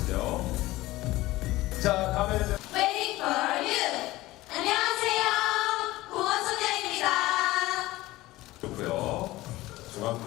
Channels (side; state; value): right; quieter; 18.1 dB